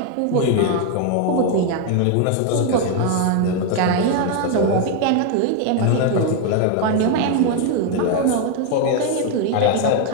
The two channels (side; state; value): both; different; correlation 0.01